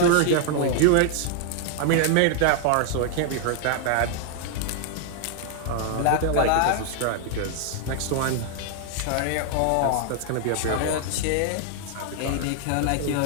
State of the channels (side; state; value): both; different; correlation 0.00